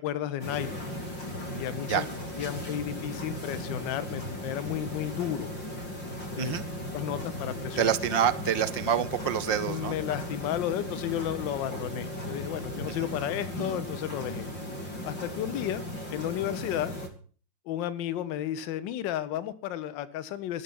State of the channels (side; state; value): right; late; 5.6 ms